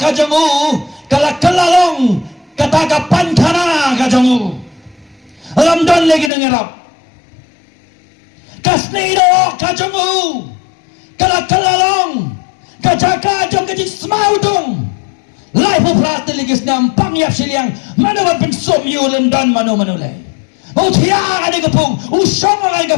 kajangu, kalalong, kata kapan kana kajangu, Ramadan lagi dengarap, kasnido kajangu, kalalong, kajaka jong kajin semaudong. Life of Rata Ligis Nam Pangyap Siliang Manawan Pensum Yulan Dan Manu Manulay Utiya Adi Gapung Usong Ay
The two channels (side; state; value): right; drops out; at 6.3 s